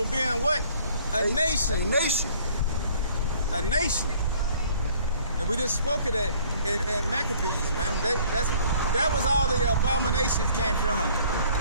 being what? A nation. A nation. A nation. And we just spoke of that in Maccabees, man. That was all the abominations came from.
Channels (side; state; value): both; inverted; correlation -0.56